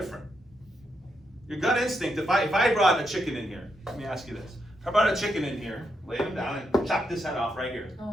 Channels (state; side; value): normal; both; correlation 0.81